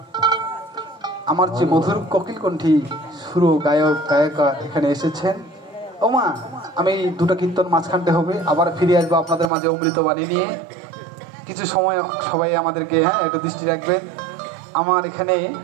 আমার যে মধুর কোকিল কণ্ঠী সুর গায়ক গায়িকা এখানে এসেছেন। ও মা, আমি দুটো কীর্তন মাঝখানতে হবে, আবার ফিরে আসবো আপনাদের মাঝে অমৃত বাণী নিয়ে। কিছু সময় সবাই আমাদেরকে একটু দৃষ্টি রাখবেন। আমার এখানে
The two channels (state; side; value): drops out; left; at 9.5 s